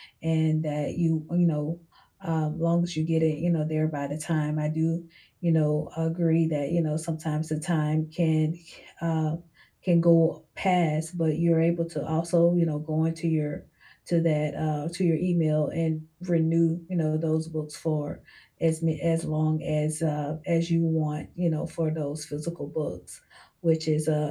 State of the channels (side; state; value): both; identical; correlation 1.00